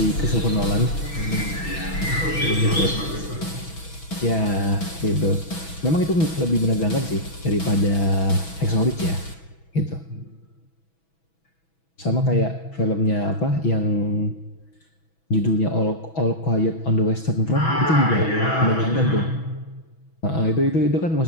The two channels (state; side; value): late; right; 6.1 ms